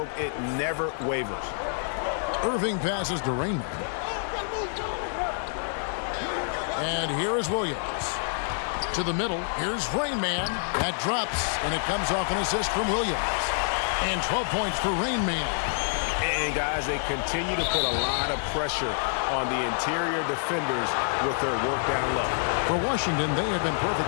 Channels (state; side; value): silent; right; digital silence